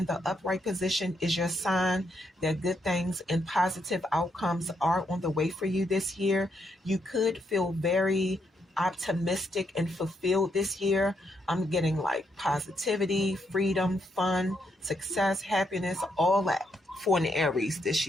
the upright position is your sign that good things and positive outcomes are on the way for you this year. You could feel very optimistic and fulfilled this year. I'm getting like positivity, freedom, fun, success, happiness, all that for an Aries this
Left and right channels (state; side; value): normal; both; correlation 0.78